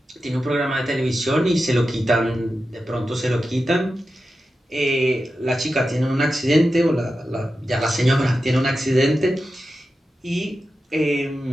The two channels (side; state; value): both; normal; correlation 0.91